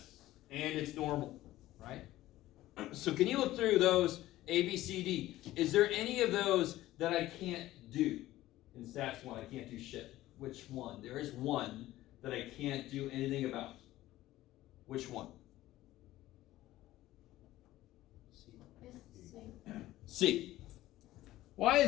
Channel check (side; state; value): right; quieter; 15.7 dB